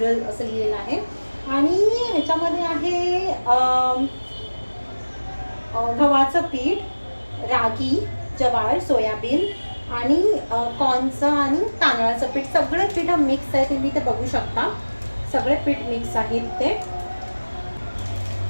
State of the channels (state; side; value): inverted; both; correlation -1.00